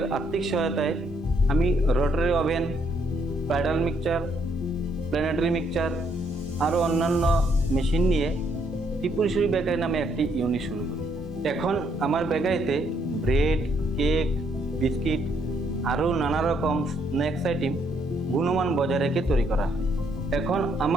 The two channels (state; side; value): normal; both; correlation 0.71